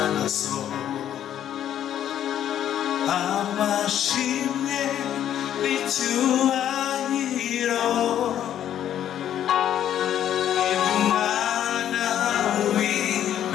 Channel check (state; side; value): quieter; right; 10.7 dB